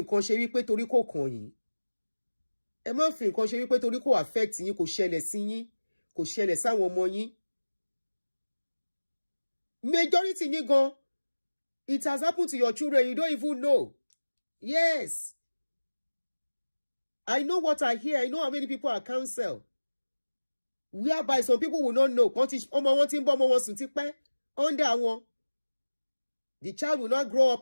ṣe wípé torí kò kàn yín. Ẹ má fi nǹkan ṣe wípé torí kò affect yín, kò ṣẹlẹ̀ sí yín, kò ṣẹlẹ̀ sáwọn ọmọ yín. Majority yín gan, it has happened to your children, you don't even know. Yes. I know what I hear. I know how many people are counseled. Whereby some people will not know. Under one. The child will not grow up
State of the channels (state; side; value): inverted; both; correlation -1.00